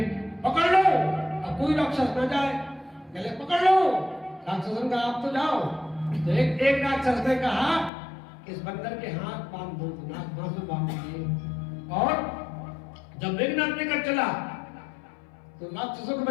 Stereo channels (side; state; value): right; drops out; at 7.9 s